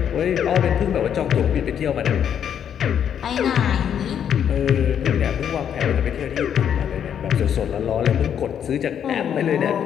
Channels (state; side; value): quieter; right; 8.8 dB